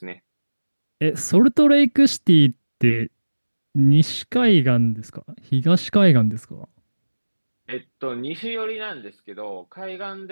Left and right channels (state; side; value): inverted; both; correlation -1.00